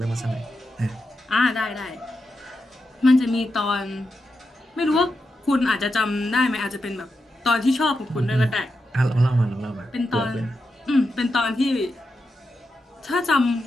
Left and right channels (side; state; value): both; normal; correlation 0.87